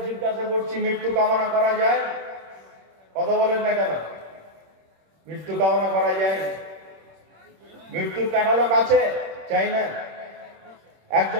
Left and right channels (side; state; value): left; late; 26 ms